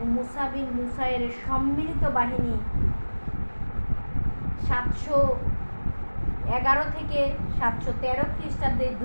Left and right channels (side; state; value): both; inverted; correlation -1.00